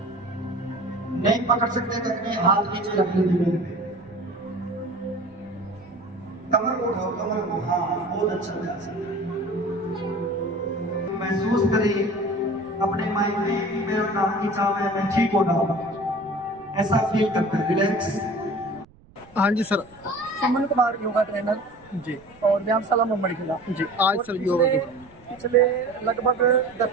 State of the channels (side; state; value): right; noise; rumble, 27 dB below the sound